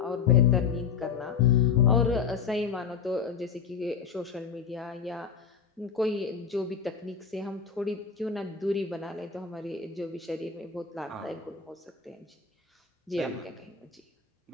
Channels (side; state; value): right; quieter; 6.4 dB